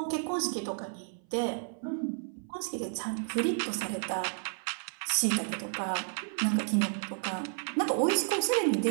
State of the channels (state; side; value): silent; left; 56 dB below the other